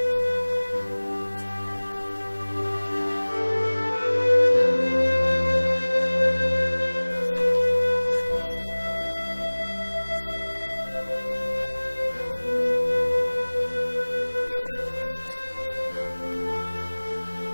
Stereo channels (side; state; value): both; inverted; correlation -1.00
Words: विकास उसकी तरक्की के मानक हैं। समाज में पुरुषों के साथ महिलाओं का भी सामाजिक और आर्थिक विकास एक महत्वपूर्ण बिंदु है। आजादी के 6 दशक बीतने के बावजूद